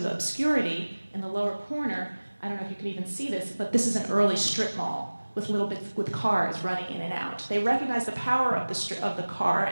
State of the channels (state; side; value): inverted; both; correlation -1.00